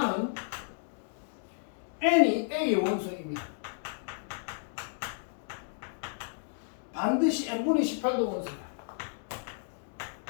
N이 A의 원소이면 반드시 N분의 18도 원소다.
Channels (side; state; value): right; silent; digital silence